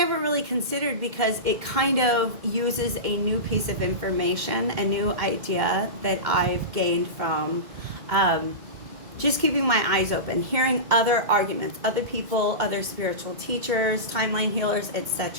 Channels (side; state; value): left; late; 2.2 ms